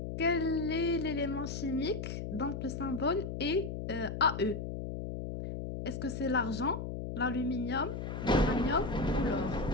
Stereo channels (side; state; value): left; noise; hum, 5 dB below the sound